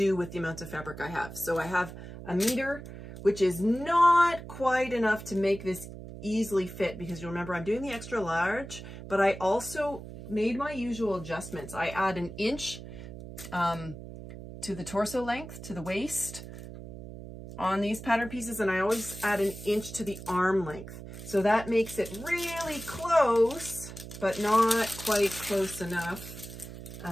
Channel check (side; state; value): right; noise; hum, 12 dB below the sound